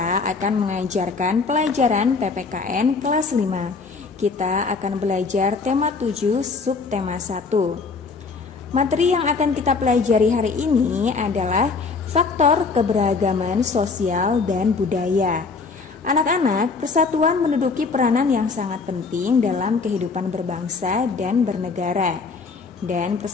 akan mengajarkan pelajaran PPKN kelas 5. Kita akan belajar tema 7 subtema 1. Materi yang akan kita pelajari hari ini adalah faktor keberagaman sosial dan budaya. Anak-anak, persatuan menduduki peranan yang sangat penting dalam kehidupan berbangsa dan bernegara. Dan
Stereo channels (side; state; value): right; quieter; 4.5 dB